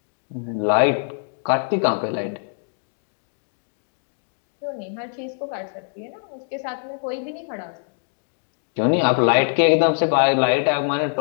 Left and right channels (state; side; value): silent; right; digital silence